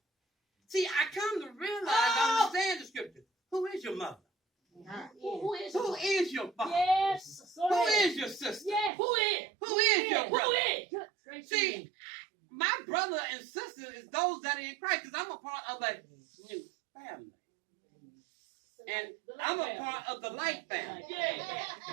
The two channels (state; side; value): drops out; left; at 8.9 s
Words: See, I come to realize, understand the scripture. Who is your mother? Who is Who is your father? Yes. Go Who ahead. is your sister? Yes. Who is? Who is your Who brother? is? See, my brother and sister is those that are in Christ because I'm a part of a new family. And I'm a part of the light family.